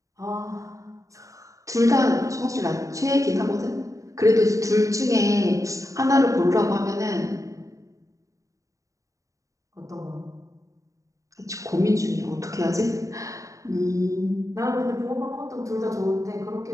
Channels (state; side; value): late; left; 0.16 ms